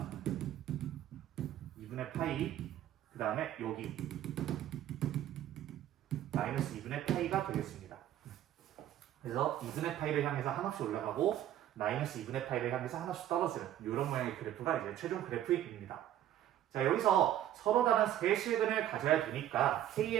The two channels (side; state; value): left; quieter; 12.0 dB